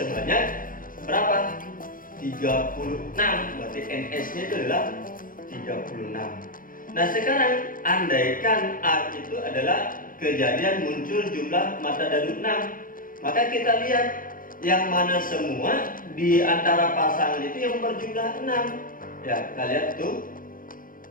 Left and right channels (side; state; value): right; late; 0.40 ms